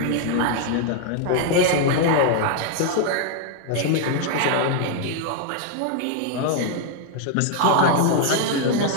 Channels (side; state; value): both; different; correlation 0.00